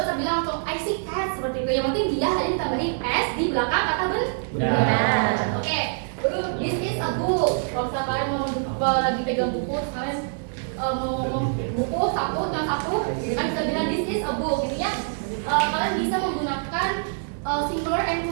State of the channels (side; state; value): left; silent; 60 dB below the other